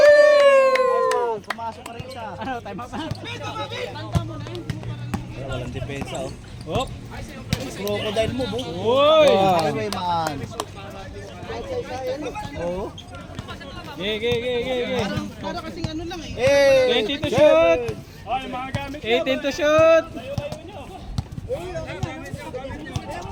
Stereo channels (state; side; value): identical; both; correlation 1.00